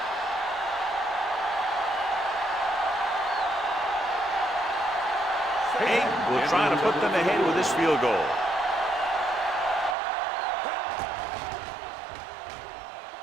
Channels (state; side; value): drops out; left; at 10.0 s